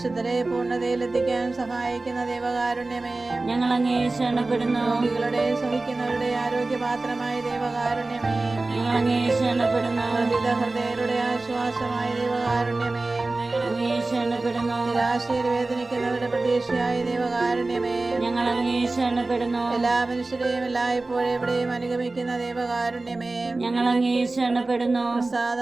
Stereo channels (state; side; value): quieter; left; 3.2 dB